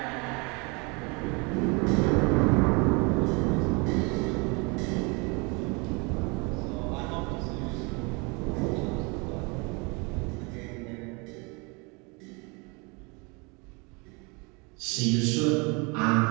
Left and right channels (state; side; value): quieter; left; 29.9 dB